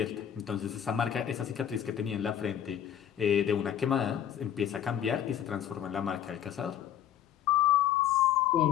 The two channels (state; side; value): quieter; right; 10.2 dB